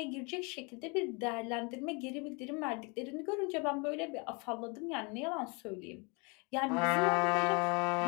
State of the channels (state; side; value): quieter; right; 31.3 dB